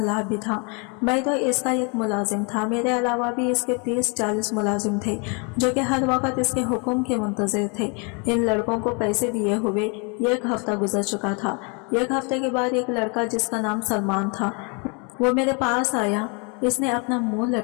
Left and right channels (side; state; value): right; quieter; 34.0 dB